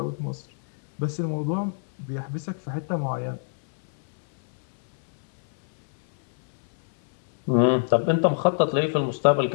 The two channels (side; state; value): right; silent; 62 dB below the other